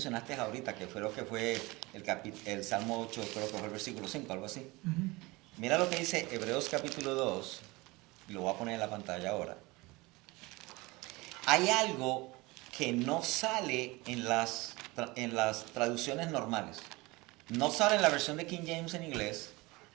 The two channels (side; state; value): left; quieter; 23.0 dB